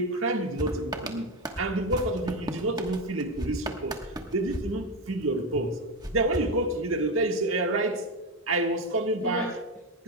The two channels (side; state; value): both; normal; correlation 0.13